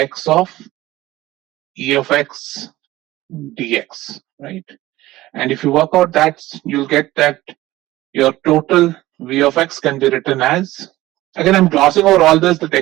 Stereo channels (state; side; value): quieter; left; 17.0 dB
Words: of e of x dx, right? And if you work out that, you'll get that your total v of x can be written as, again, I'm glossing over all this, the